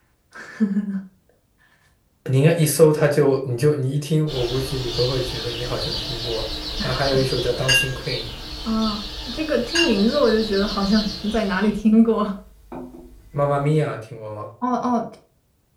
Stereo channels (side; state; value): both; identical; correlation 1.00